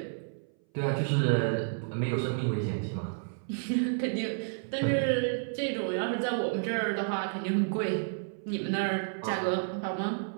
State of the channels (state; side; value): silent; left; 57 dB below the other